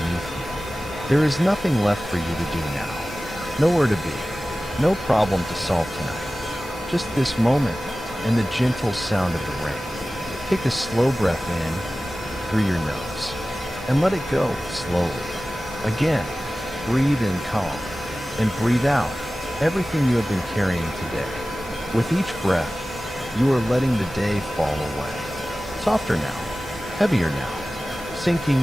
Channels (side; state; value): both; normal; correlation 0.96